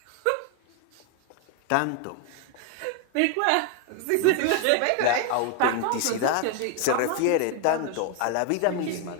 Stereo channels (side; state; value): both; different; correlation 0.01